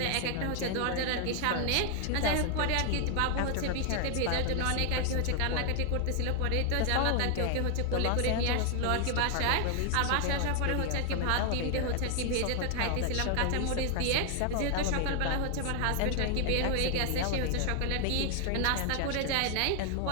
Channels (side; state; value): both; different; correlation 0.00